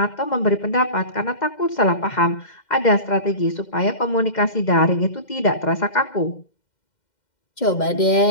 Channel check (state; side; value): late; right; 2.1 ms